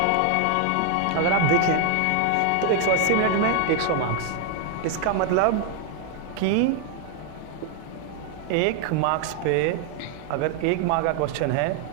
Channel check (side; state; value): both; different; correlation 0.00